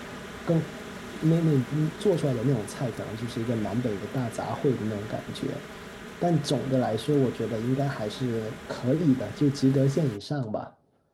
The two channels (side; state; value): both; identical; correlation 1.00